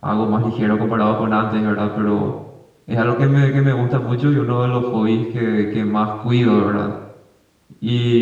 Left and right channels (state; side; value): identical; both; correlation 1.00